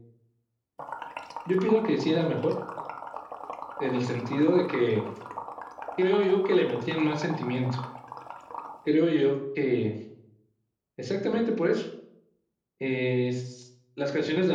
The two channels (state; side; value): identical; both; correlation 1.00